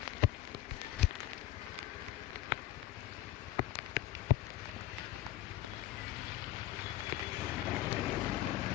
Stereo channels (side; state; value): right; quieter; 14.1 dB